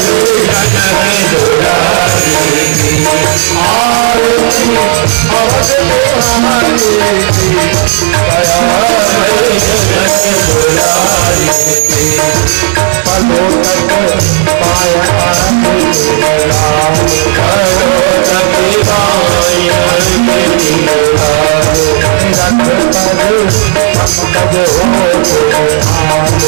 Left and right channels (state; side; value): silent; left; 61 dB below the other